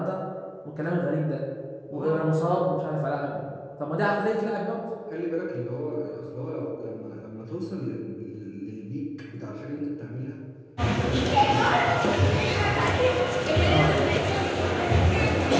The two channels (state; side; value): identical; both; correlation 1.00